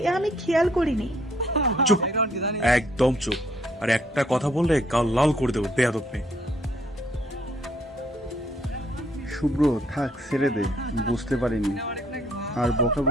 আমি খেয়াল করিনি। চুপ, একদম চুপ। আর একটা কথা বললে গাল লাল করে দেবো, বেয়াদব মেয়ে। শুভ্র, থাক, ছেড়ে দে, বুঝতে পারিনি, আর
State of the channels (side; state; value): both; normal; correlation 0.66